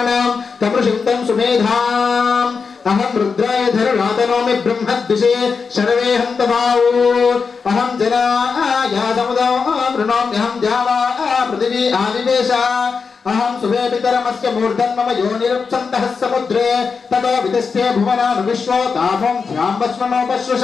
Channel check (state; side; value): quieter; right; 5.3 dB